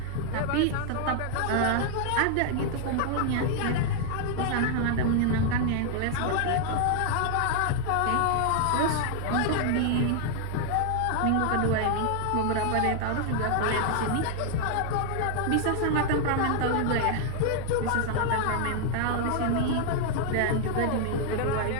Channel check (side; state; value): both; different; correlation 0.00